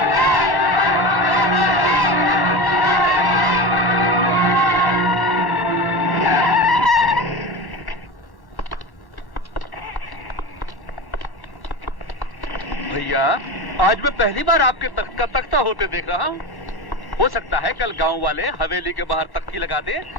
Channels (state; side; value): late; right; 1.1 ms